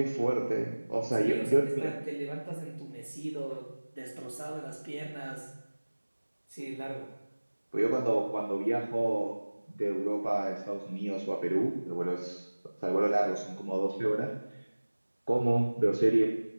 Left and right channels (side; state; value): both; inverted; correlation -1.00